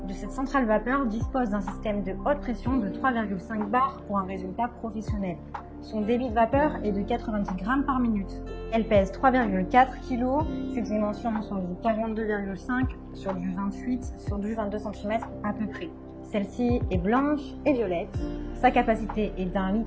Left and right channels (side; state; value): both; identical; correlation 1.00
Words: de cette centrale vapeur dispose d'un système de haute pression de 3,5 bars pour un résultat professionnel. Son débit de vapeur est de 90 grammes par minute. Elle pèse 3,4 kg. Ses dimensions sont du 42,5 sur du 28 sur du 22 cm à peu près. Celle-ci est blanche et violette. Sa capacité est d'1,7